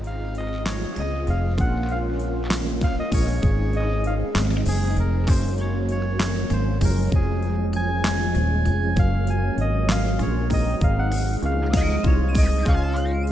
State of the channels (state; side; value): normal; both; correlation 0.87